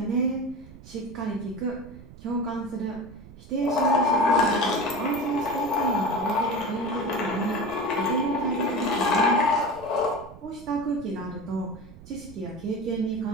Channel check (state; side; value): noise; right; rumble, 18 dB below the sound